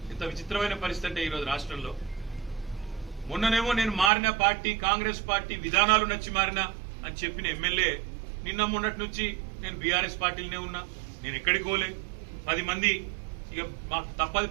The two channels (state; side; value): drops out; left; at 4.1 s